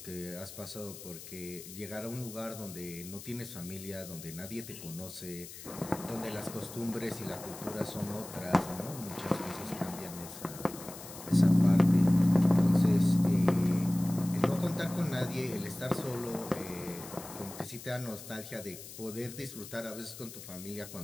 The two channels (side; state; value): left; noise; hiss, 14 dB below the sound